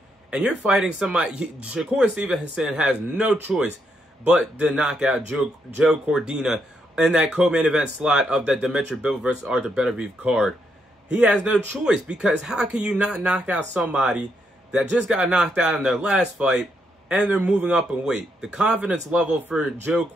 And you're fighting somebody. Shakur Stevenson has no choice but to knock out Joe Cordina in that co-main event slot of that Dimitri Bivol versus Arthur Beterbiev card. He has no choice, because how can you not knock out somebody that just got knocked out in their last fight and they're moving up in weight? The confidence level for Joe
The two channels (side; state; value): both; normal; correlation 0.78